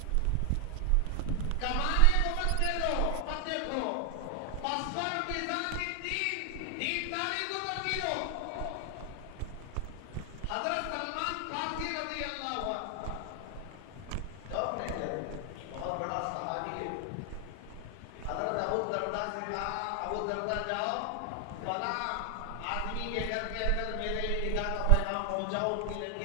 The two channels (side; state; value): both; different; correlation 0.00